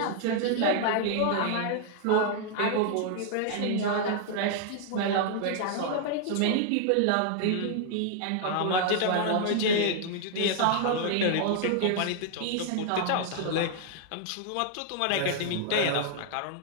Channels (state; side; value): different; both; correlation 0.00